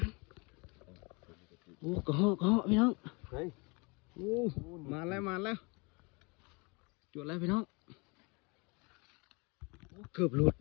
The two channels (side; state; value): right; quieter; 29.3 dB